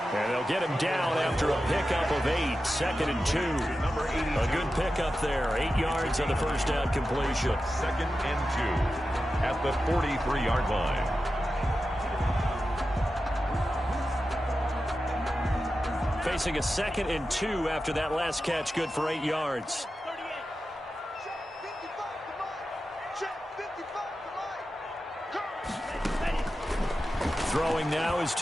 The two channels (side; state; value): both; normal; correlation 0.92